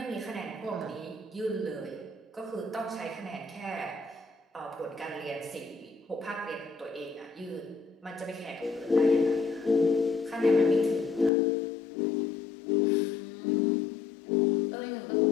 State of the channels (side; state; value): right; drops out; at 11.3 s